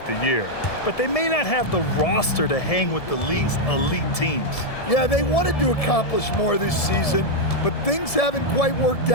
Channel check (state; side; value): late; right; 1.7 ms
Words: the year, but they may not have the roster to hang with the league's elite teams. Yeah, they wanted to accomplish more this season, but things haven't quite worked